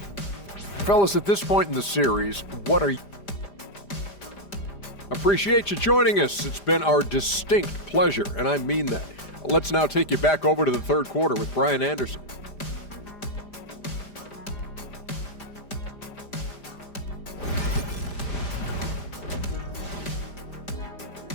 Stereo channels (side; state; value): right; late; 5.0 ms